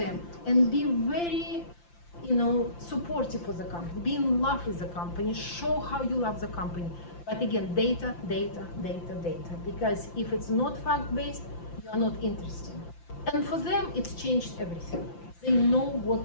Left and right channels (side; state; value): right; late; 5.8 ms